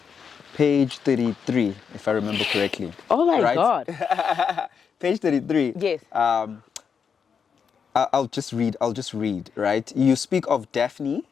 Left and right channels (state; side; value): quieter; right; 6.6 dB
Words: page 33, if I remember correctly. Oh my God. Page 33. Yes. I'll just read, right? You speak of Daphne.